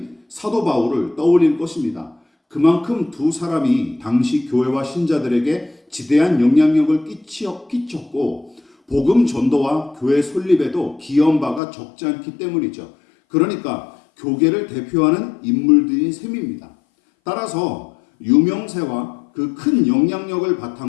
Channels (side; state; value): right; drops out; at 11.6 s